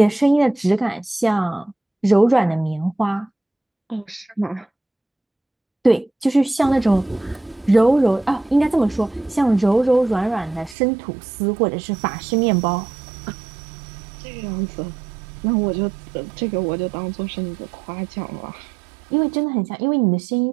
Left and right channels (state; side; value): drops out; left; at 10.8 s